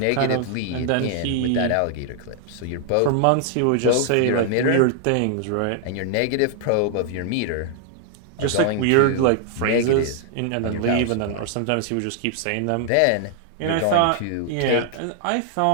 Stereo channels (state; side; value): different; both; correlation 0.00